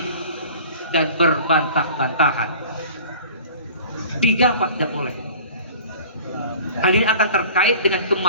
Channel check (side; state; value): both; inverted; correlation -0.44